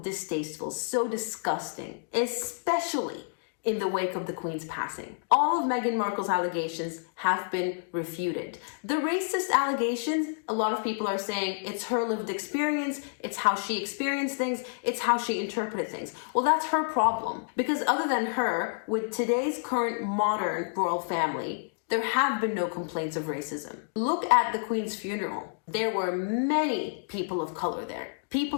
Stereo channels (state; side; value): silent; right; digital silence